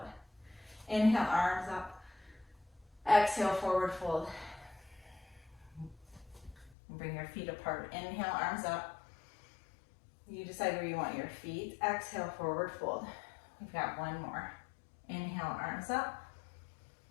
Inhale, arms up. Exhale, forward fold. Bring your feet apart. Inhale, arms up. You decide where you want your feet. Exhale, forward fold. We've got one more. Inhale, arms up.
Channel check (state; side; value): drops out; right; at 6.8 s